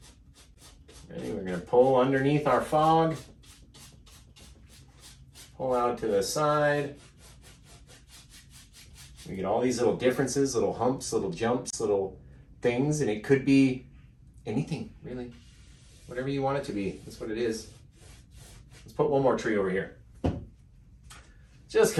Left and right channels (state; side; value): identical; both; correlation 1.00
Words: Ready? We're gonna pull underneath our fog. Pull out to the side. We get all these little differences, little humps, little jumps, little things, and it could be anything, really. Whatever you want it to be, that's what it is. Let's put one more tree over here. Just